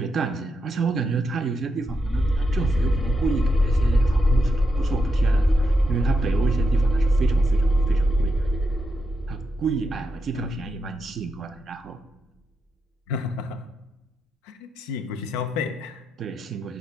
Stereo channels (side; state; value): both; normal; correlation 0.84